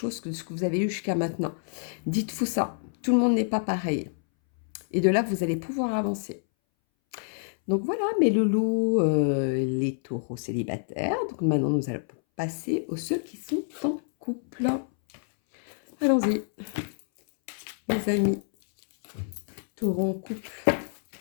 que ce que vous avez eu jusqu'à maintenant. Dites-vous ça, tout le monde n'est pas pareil. Et de là, vous allez pouvoir avancer. Donc voilà, mes loulous, les taureaux célibataires. Donc maintenant, nous allons passer aux ceux qui sont en couple. Allons-y, mes amis. Taureaux en couple.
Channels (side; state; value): right; silent; 60 dB below the other